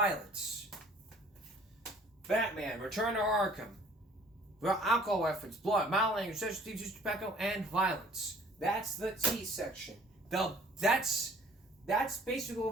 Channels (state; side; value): normal; both; correlation 0.54